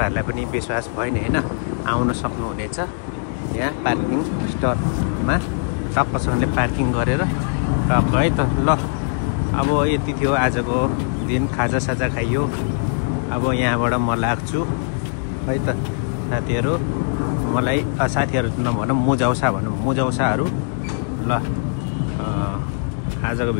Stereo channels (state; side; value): silent; right; 61 dB below the other